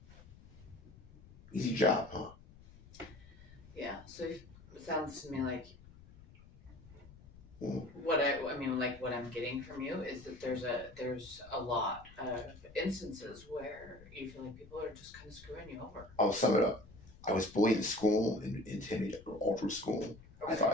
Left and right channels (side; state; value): left; noise; rumble, 21 dB below the sound